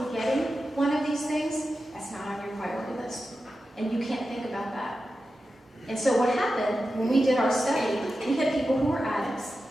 getting one of these things, that's not on your priority list. And you can't think about that. And so what happened when we did our study, we had people who were addicts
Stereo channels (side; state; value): both; normal; correlation 0.92